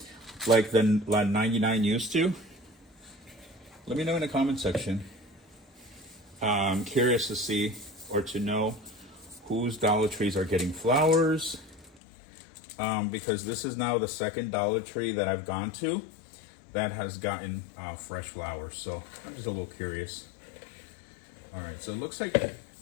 Like the 99 used to? Let me know in the comment section. I'm curious to see or to know whose Dollar Trees are getting flowers. Because this is now the second Dollar Tree that I've gone to that has gotten fresh flowers. So I'm just a little curious. All right, so it looks like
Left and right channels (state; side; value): drops out; right; at 12.0 s